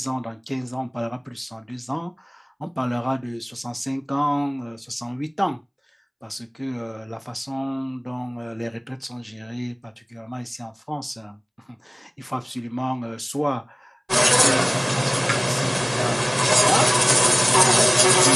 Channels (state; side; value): identical; both; correlation 1.00